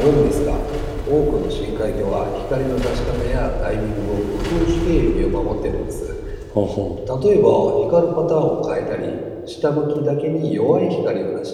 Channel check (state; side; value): identical; both; correlation 1.00